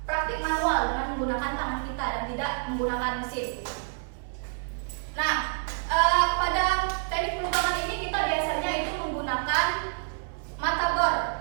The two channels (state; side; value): silent; left; 59 dB below the other